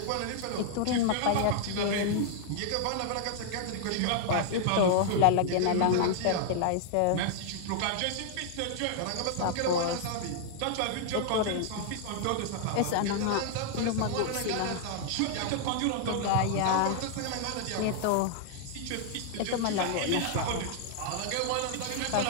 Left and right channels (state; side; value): different; both; correlation -0.01